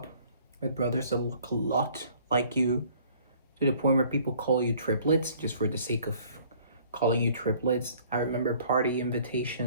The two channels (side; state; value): both; inverted; correlation -0.56